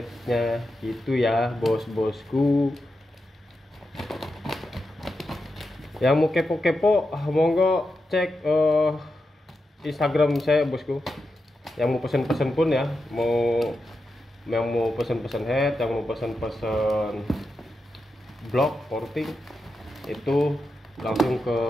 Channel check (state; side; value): normal; both; correlation 0.88